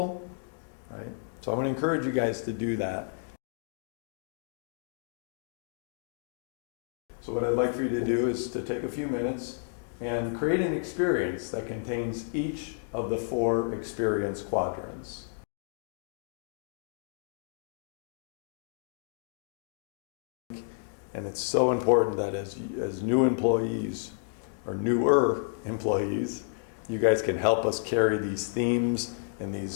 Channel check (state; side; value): silent; right; digital silence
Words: right? So I'm going to encourage you guys to do that. So what I'd like for you to do is to take a few minutes and create an experience that contains each of the 4 experience quadrants. And it's so important that as new employees, or newer employees, you guys can help us carry these themes and